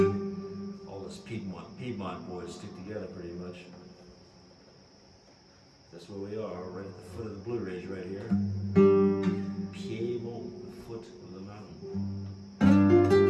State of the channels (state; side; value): identical; both; correlation 1.00